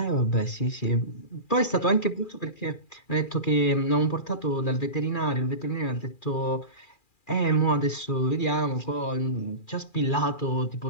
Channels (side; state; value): right; late; 2.4 ms